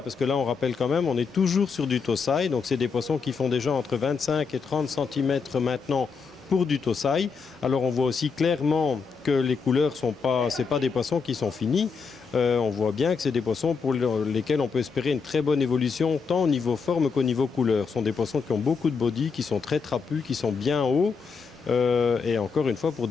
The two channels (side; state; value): right; quieter; 5.4 dB